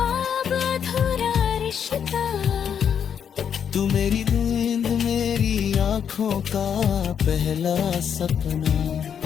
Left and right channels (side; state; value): right; quieter; 8.0 dB